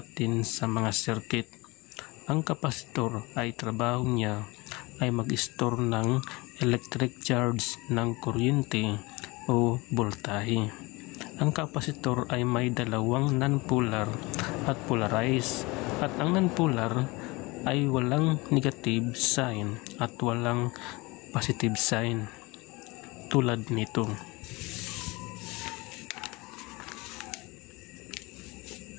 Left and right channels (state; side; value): quieter; right; 24.0 dB